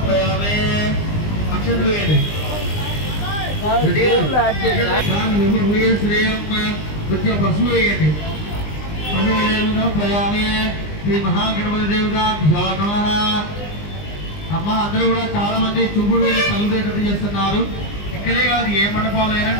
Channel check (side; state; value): right; late; 20 ms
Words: अक्षतवेदे श्रेयं पशुवेदे पशुवेदं समर्पयामि श्री महागणपति देवताभ्यो नमः అమ్మ అందరూ కూడా చాలా మంది చుప్పుడు వేలు తగలబెట్టేటట్టు చేస్తున్నారు. ఇక్కడే కాదు ఏ మండపాలైనా